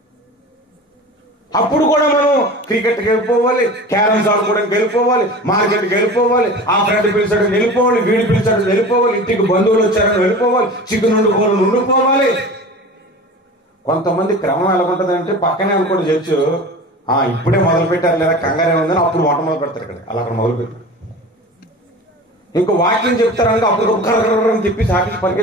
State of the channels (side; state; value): both; normal; correlation 0.36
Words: అప్పుడు కూడా మనం క్రికెట్కి వెళ్ళిపోవాలి, క్యారమ్స్ ఆడుకోవడానికి వెళ్ళిపోవాలి, మార్కెట్కి వెళ్ళిపోవాలి, ఆ ఫ్రెండ్ పిలిచాడు వెళ్ళిపోవాలి, వీడి పిలిచాడు వెళ్ళిపోవాలి, ఇంటికి బంధువులు వచ్చారని వెళ్ళిపోవాలి, చికెన్ వండుకోవాలి. కొంతమంది క్రమం ఎలా ఉంటుందంటే పక్కనే అనుకోండి చర్చు, ఇప్పుడే మొదలు పెట్టారు లేదా కంగారే ఉందని అప్పుడు వంట మొదలు పెడతారు. ఇక్కడ అలా అక్కడ మొదలు పెట్టారు. ఇంకో వాక్యం చెప్తారనుకో అప్పుడు కర్రని తిప్పి సాకి